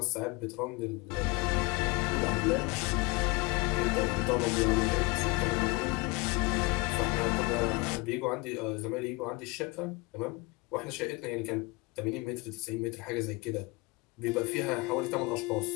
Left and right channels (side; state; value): right; quieter; 25.8 dB